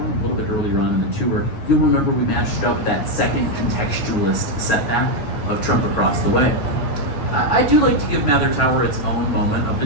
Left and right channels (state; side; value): late; right; 9.1 ms